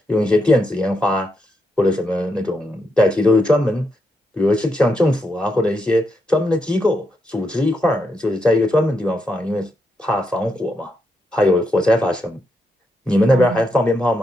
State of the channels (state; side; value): normal; both; correlation 0.81